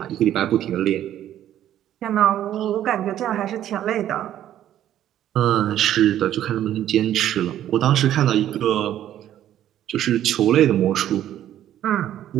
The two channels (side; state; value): left; quieter; 11.7 dB